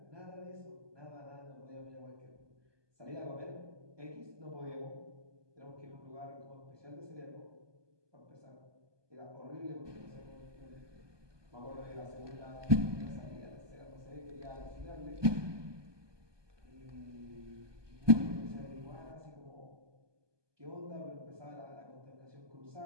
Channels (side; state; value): left; late; 1.2 ms